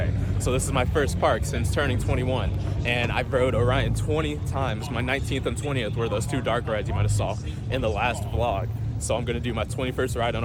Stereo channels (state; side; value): identical; both; correlation 1.00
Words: So this is my first park since turning 21, and I rode Orion 20 times. My 19th and 20th were those two dark rides you might have saw in the last vlog. So I'm gonna do my 21st ride on